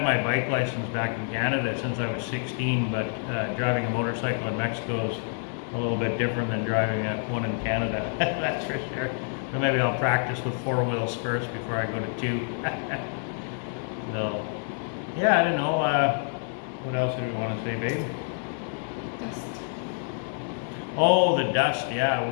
my bike license back in Canada since I was 16, but driving a motorcycle in Mexico is a little bit different than driving one in Canada. That's for sure. So maybe I'll practice with 4 wheels first before I go to 2. So, yeah, I don't know. What else did we want to say, babe? Dust. Oh, the dust. Yeah,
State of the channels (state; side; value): silent; right; 57 dB below the other